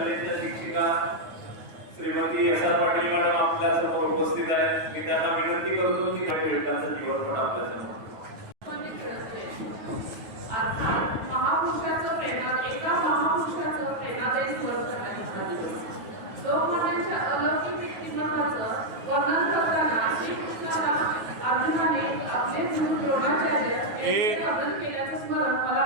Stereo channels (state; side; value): late; left; 9.3 ms